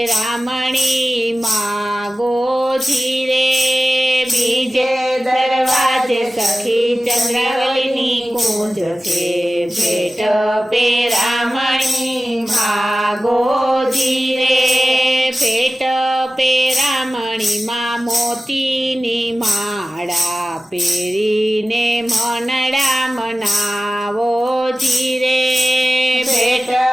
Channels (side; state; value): both; normal; correlation 0.96